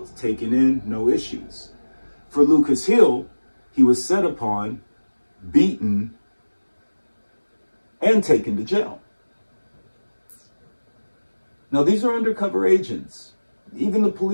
taken in, no issues. For Lucas Hill, he was set upon, beaten, and taken to jail. Now, these are undercover agents. Even the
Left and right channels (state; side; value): inverted; both; correlation -1.00